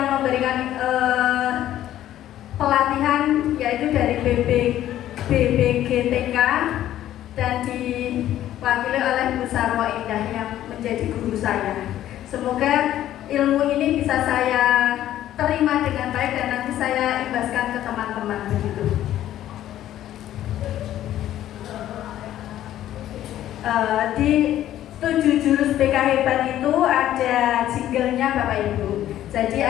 memberikan pelatihan yaitu dari BBGTK dan diwakili oleh Bu Sarwo Indah yang menjadi guru saya. Semoga ilmu ini bisa saya terima dengan baik dan nanti saya imbaskan ke teman-teman begitu. Di 7 jurus BK hebat itu ada jinglenya Bapak Ibu. Jadi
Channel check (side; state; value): right; quieter; 12.6 dB